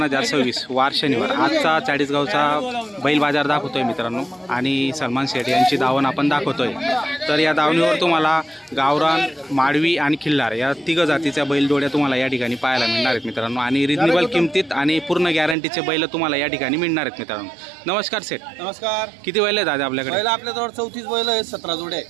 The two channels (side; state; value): left; drops out; at 15.6 s